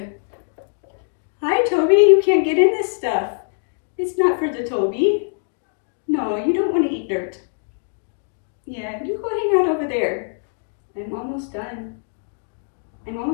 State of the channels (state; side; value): silent; right; digital silence